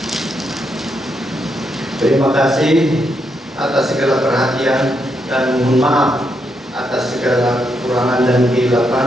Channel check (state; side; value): normal; both; correlation 0.80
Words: Terima kasih atas segala perhatian dan mohon maaf atas segala kekurangan dan